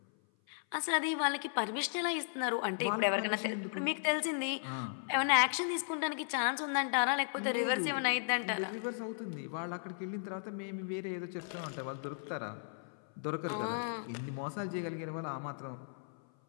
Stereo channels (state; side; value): silent; right; 54 dB below the other